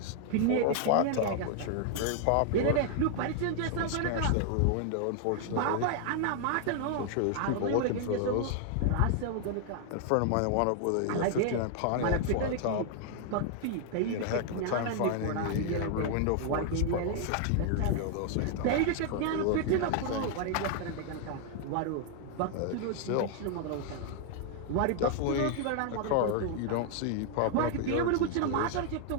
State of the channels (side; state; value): both; different; correlation 0.00